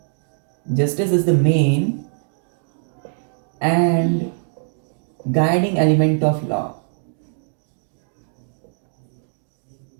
end guiding element of law.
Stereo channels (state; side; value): silent; left; digital silence